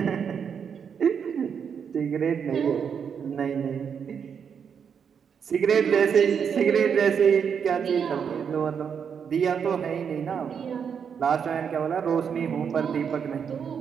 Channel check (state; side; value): quieter; left; 7.1 dB